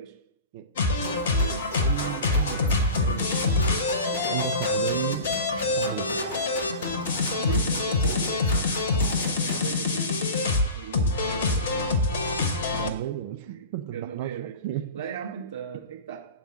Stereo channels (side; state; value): both; inverted; correlation -0.34